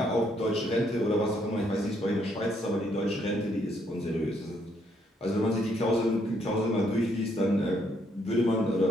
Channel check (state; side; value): normal; both; correlation 0.72